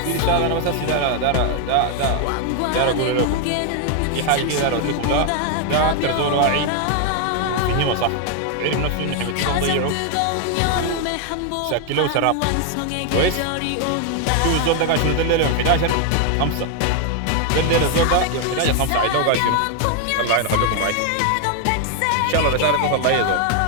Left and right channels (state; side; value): different; both; correlation 0.00